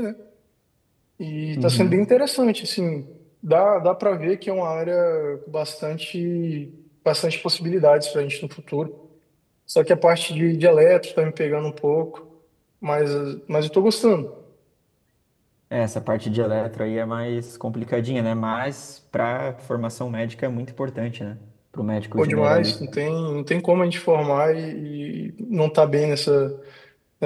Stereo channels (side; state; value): both; identical; correlation 1.00